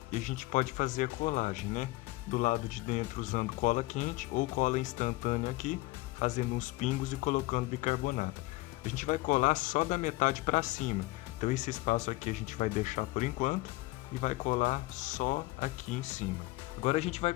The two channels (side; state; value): right; quieter; 20.2 dB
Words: e a gente pode fazer a colagem, né, do lado de dentro usando cola quente ou cola instantânea aqui, fazendo uns pingos e colocando bicarbonato. A gente vai colar só da metade para cima, então esse espaço aqui a gente vai deixar por enquanto e vai colar só aqui em cima. Agora a gente vai